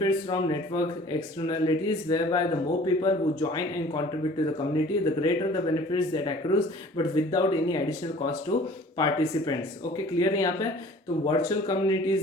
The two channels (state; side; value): normal; both; correlation 0.49